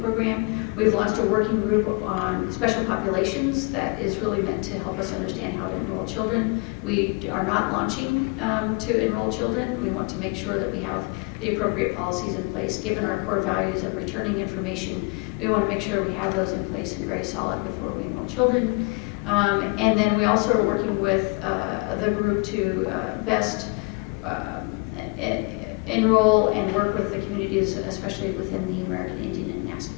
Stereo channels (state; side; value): quieter; right; 29.8 dB